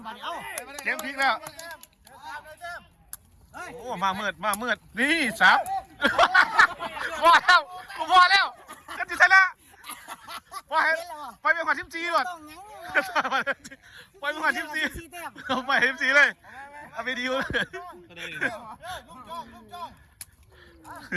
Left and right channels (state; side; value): identical; both; correlation 1.00